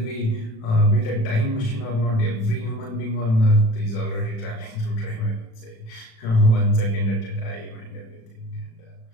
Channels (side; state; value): right; late; 36 ms